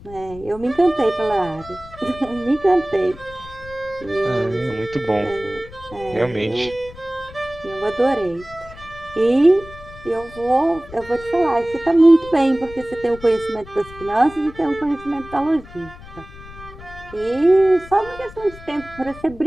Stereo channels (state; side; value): noise; left; rumble, 18 dB below the sound